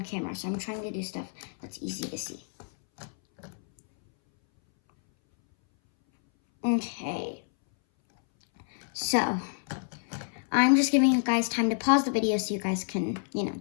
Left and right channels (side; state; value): right; silent; 59 dB below the other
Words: camera. So I'm trying to do stuff that's easy to see. Okay. So, I'm just giving you guys time to pause the video so you guys can,